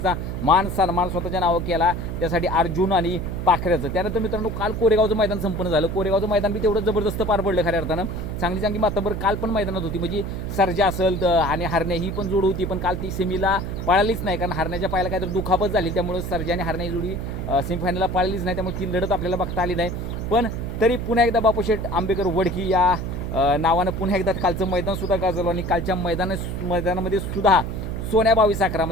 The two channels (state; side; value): noise; right; hum, 5 dB below the sound